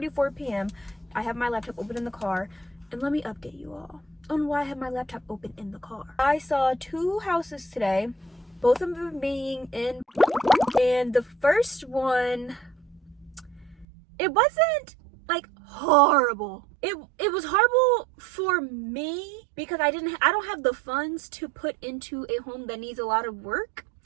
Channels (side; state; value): left; drops out; at 13.9 s